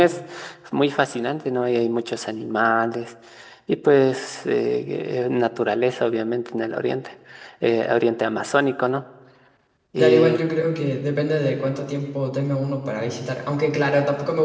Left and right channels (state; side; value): identical; both; correlation 1.00